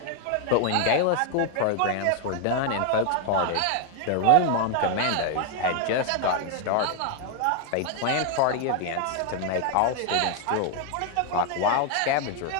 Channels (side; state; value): both; different; correlation 0.00